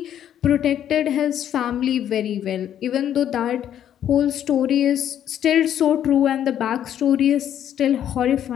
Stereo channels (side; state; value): right; quieter; 10.3 dB